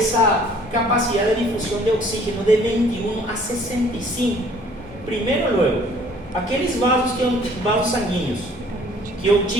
capacidad de difusión de oxígeno de 21 a 65. Primero, luego, aqueles vasos sanguíneos que eu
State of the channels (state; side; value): normal; both; correlation 0.56